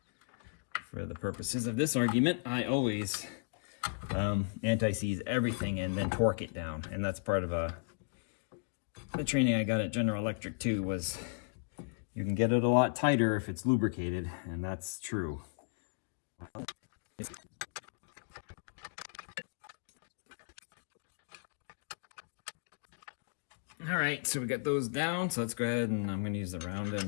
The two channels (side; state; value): right; silent; digital silence